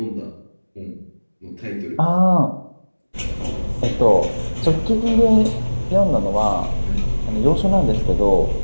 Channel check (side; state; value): both; inverted; correlation -1.00